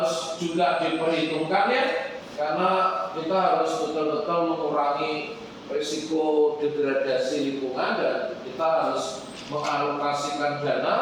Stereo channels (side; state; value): both; identical; correlation 1.00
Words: juga diperhitungkan, ya, karena kita harus betul-betul mengurangi risiko degradasi lingkungan, dan kita harus mengalokasikan